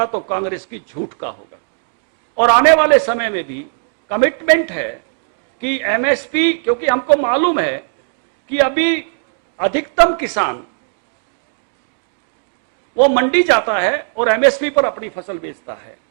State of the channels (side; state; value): left; silent; digital silence